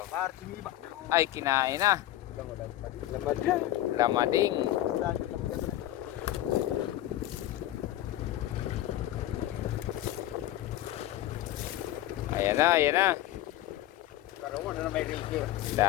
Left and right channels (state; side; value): quieter; right; 14.3 dB